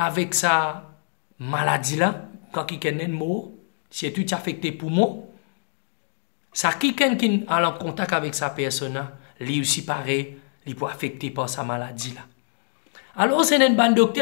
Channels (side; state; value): right; silent; digital silence